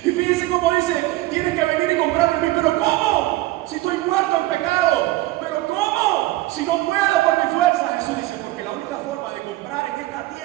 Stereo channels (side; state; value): left; quieter; 17.8 dB